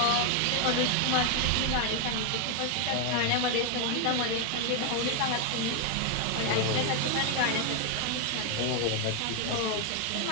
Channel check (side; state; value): both; different; correlation 0.01